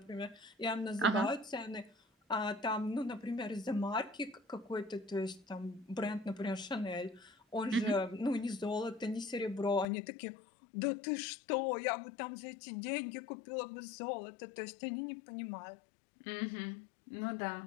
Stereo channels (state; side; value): drops out; right; at 9.9 s